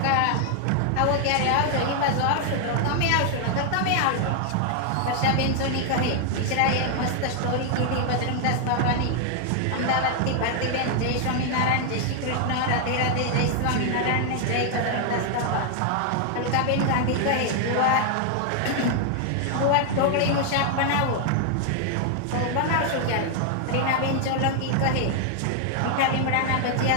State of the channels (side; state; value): both; different; correlation 0.00